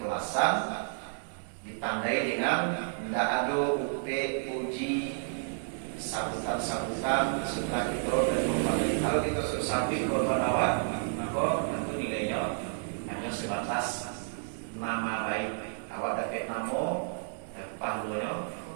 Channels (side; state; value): left; silent; 57 dB below the other